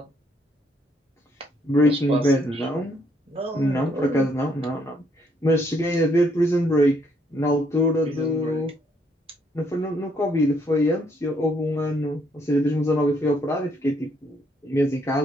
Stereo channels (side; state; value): both; normal; correlation 0.70